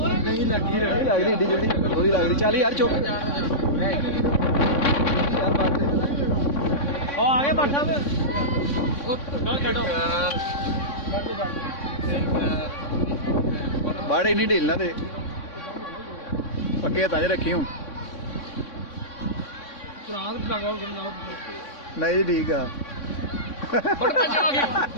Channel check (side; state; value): right; late; 3.6 ms